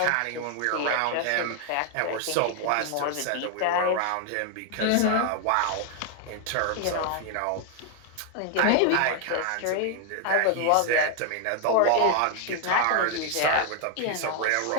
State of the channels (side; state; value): both; different; correlation 0.00